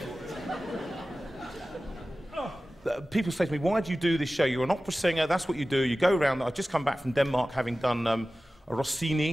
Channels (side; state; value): both; normal; correlation 0.96